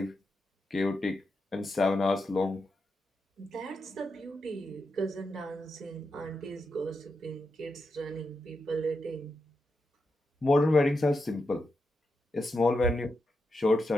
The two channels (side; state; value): both; normal; correlation 0.86